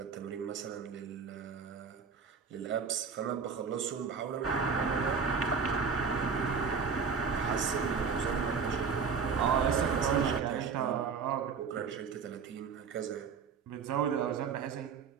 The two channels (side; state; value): left; quieter; 5.8 dB